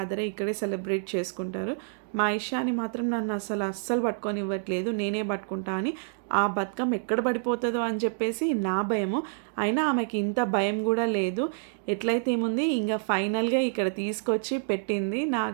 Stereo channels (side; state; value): left; silent; digital silence